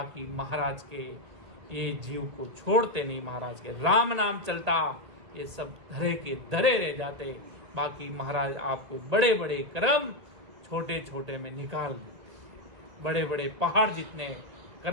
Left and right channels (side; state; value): left; late; 1.8 ms